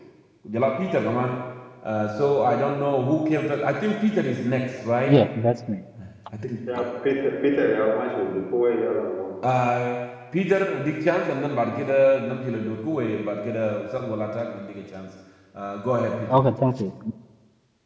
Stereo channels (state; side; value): identical; both; correlation 1.00